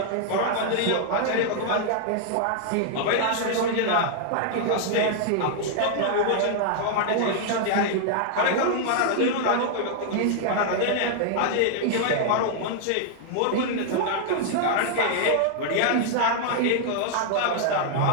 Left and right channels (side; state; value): both; different; correlation -0.01